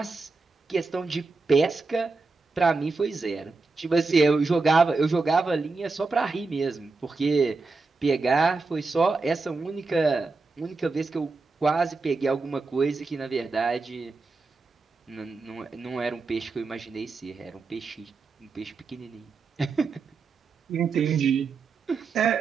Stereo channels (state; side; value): quieter; left; 4.0 dB